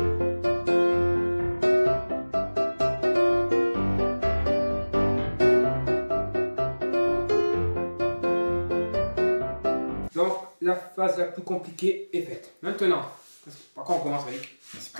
Donc, la phase la plus compliquée est faite. Maintenant, par quoi on commence, Malik? Je suis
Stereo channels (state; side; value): inverted; both; correlation -1.00